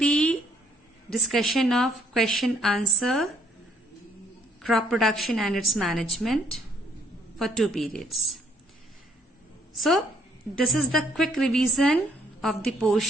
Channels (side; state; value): both; normal; correlation 0.64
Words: discussion of question answer, crop production and its management for 2 periods. So, this is the quick revision of the